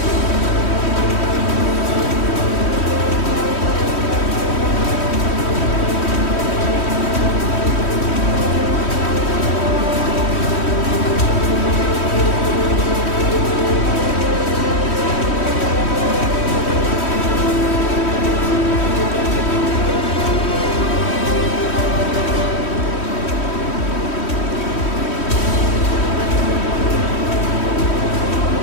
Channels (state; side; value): late; right; 3.1 ms